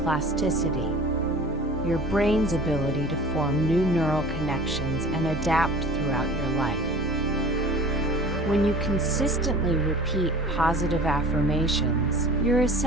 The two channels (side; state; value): both; normal; correlation 0.42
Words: your brain's ability to form new neural connections and adapt throughout your life. When you consistently repeat positive affirmations, you're